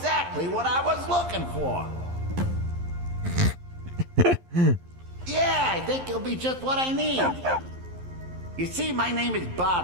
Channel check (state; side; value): late; left; 11 ms